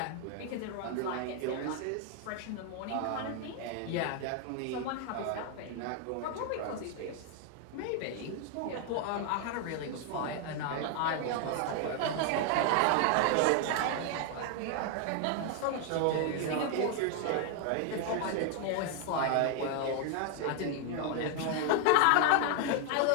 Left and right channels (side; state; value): both; different; correlation 0.00